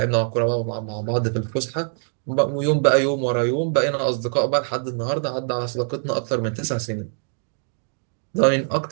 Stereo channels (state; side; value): silent; left; 60 dB below the other